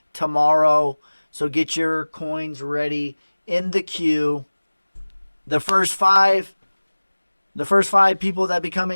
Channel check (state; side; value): inverted; both; correlation -1.00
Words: tomorrow. So get your coins ready in the queue. The first five people that become